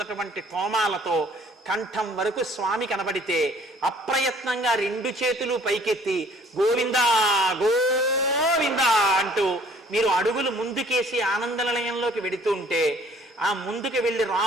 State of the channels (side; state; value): both; normal; correlation 0.56